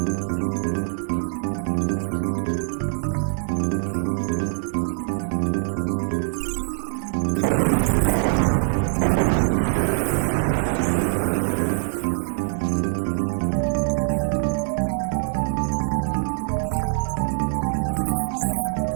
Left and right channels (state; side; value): silent; left; digital silence